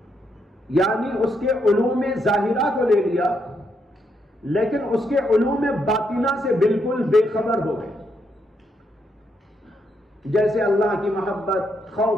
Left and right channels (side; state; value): both; normal; correlation 0.78